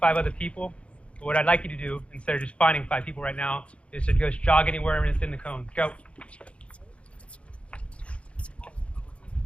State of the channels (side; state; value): right; late; 0.061 ms